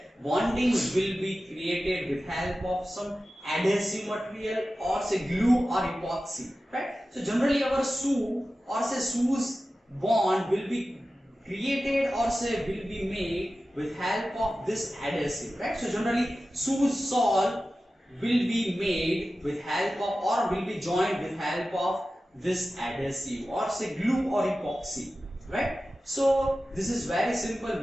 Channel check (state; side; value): normal; both; correlation 0.94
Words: bonding will be created with help of some adhesive material, or say glue or epoxy, right? So generally our shoe, or say shoes bond will be created, or say will be made with help of this adhesive, right? So generally shoes sole will be made with help of, or will be joined with help of this adhesive, or say glue or epoxy, right? So this is very simple.